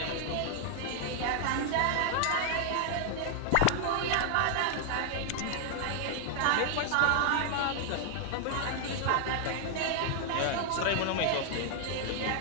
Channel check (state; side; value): different; both; correlation 0.00